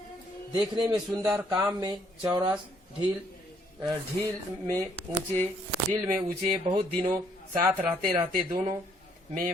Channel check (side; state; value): both; normal; correlation 0.67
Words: देखने में सुंदर, काम में चौरस, ढील में ऊंचे बहुत दिनों साथ रहते रहते दोनों